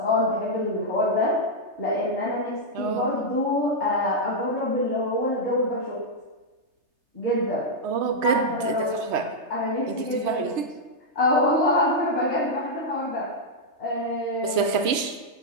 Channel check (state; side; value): late; left; 3.3 ms